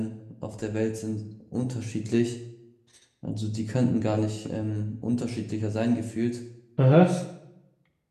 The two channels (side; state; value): both; identical; correlation 1.00